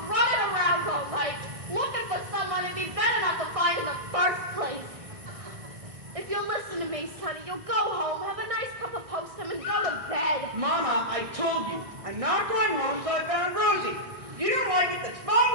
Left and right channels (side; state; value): left; late; 1.6 ms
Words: running around all night looking for someone it'd be better not to find in the first place. If you'll listen to me, Sonny, you'll go home, have a nice cup of postum, and go to bed. Mama, I told you, I'm not going home until I found Rosie. If you don't like it, that's